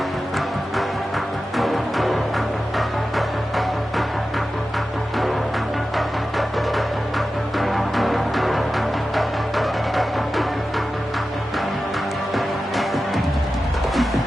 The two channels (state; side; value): normal; both; correlation 0.93